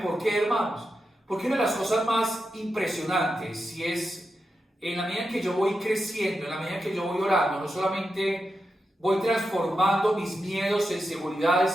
por qué, hermanos? Porque una de las cosas más impresionantes, si es en la medida en que yo voy creciendo, en la medida en que yo voy orando, no solamente voy transformando mis miedos en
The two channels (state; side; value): normal; both; correlation 0.88